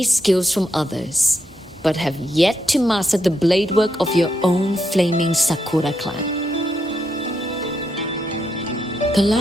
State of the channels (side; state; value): both; normal; correlation 0.81